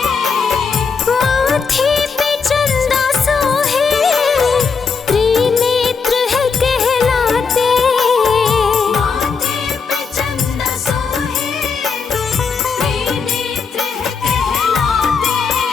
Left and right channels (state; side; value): quieter; right; 5.4 dB